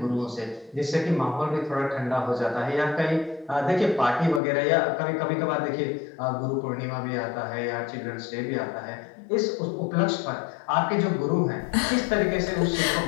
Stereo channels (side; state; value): right; drops out; at 4.4 s